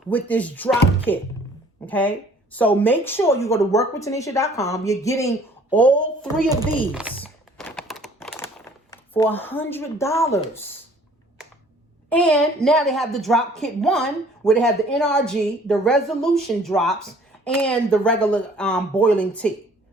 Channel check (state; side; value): normal; both; correlation 0.55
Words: with this drop kit, okay? So make sure you go to workwithtanisha.com. You're getting all 3 of these for $100. And now they have the drop kit 1, where they have the NRG, the Resolution drops, and the regular boiling tea,